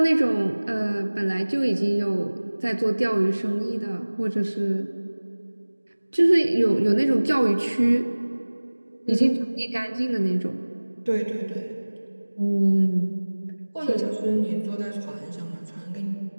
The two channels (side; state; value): both; inverted; correlation -1.00